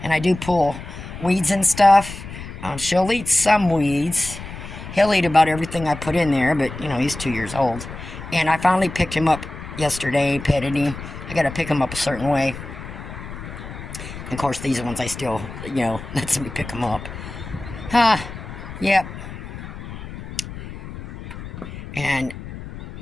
And I do pull weeds and stuff. She'll eat some weeds. He'll eat about everything I put in there, but, he's 2 years old. And I finally picked him up yesterday, petted him. I got to pick him up a certain way. And of course, these ones I still, let somebody pick them up. Yep. And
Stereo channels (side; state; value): left; noise; rumble, 11 dB below the sound